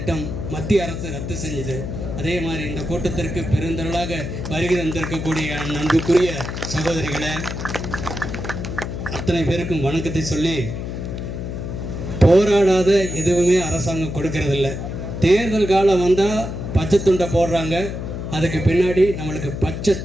மத்திய அரசு ரத்து செஞ்சுது. அதே மாதிரி இந்த கூட்டத்திற்கு பெருந்திரளாக வருகை தந்திருக்கக்கூடிய அன்புக்குரிய சகோதரிகளை அத்தனை பேருக்கும் வணக்கத்தை சொல்லி, போராடாத எதுவுமே அரசாங்கம் கொடுக்கறதில்ல. தேர்தல் காலம் வந்தால் பச்சை துண்டை போடுறாங்க, அதுக்கு பின்னாடி நம்மளுக்கு பச்சை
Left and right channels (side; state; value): left; noise; hum, 6 dB below the sound